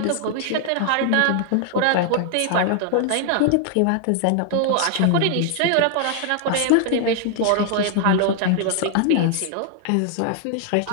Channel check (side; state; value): both; different; correlation 0.00